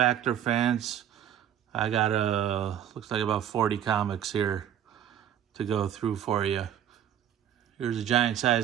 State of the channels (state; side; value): quieter; left; 10.1 dB